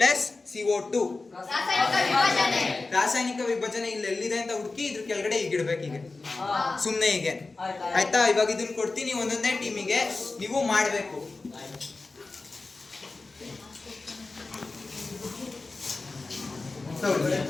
CO2. ರಾಸಾಯನಿಕ ವಿಭಜನೆ ಇಲ್ಲಿ ಎಲ್ಲಿದೆ ಅಂತ ಹುಡುಕಿ ಇದ್ರ ಕೆಳಗಡೆ ಈಗ ಇಡ್ಬೇಕು, ಹೀಗೆ ಸುಮ್ಮನೆ ಹೀಗೆ. ಆಯ್ತಾ? ಇವಾಗ ಇದನ್ನ ಕೊಡ್ತೀನಿ ಒಂದೊಂದೇ ಟೀಮಿಗೆ, ನೀವು ಮಾಡಬೇಕು.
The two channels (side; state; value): right; quieter; 3.6 dB